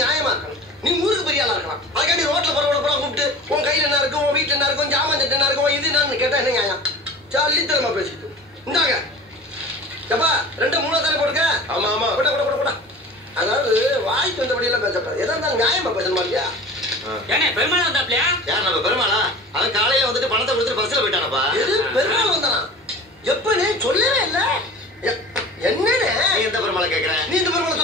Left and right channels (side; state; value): both; normal; correlation 0.38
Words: இருக்கணும். நீ ஊருக்கு பெரிய ஆளா இருக்கலாம். அதுக்காண்டி ரோட்ல போற கூப்பிட்டு உன் கையில என்ன இருக்கும், உன் வீட்டுல என்ன இருக்கும், ஜாமான் சட்டை என்ன இருக்கும், இது என்னன்னு கேட்டா என்ன நியாயம்? சல்லித்தனமா பேசிட்டு இந்தாங்க. எப்பா 2 மூணு தானே போடுங்க. ஆமா கூட. அதாவது வாய்க்கு வந்தபடியெல்லாம் பேசப்படாது. எதா இருந்தாலும் நியாயமா பேசணுமா இல்லையா? ஏனே பெருமாள் வந்தாப்லையா? யார் நம்ம பெருமாளா? அவன் காலையில வந்துட்டு பணத்தை கொடுத்துட்டு பஸ்ல போயிட்டானப்பா. எது பெருமாள் வந்தானா? எப்பனே சொல்லவே இல்ல. என்னனே எந்த பெருமாளை கேக்குற? நீ இந்த பெருமாளை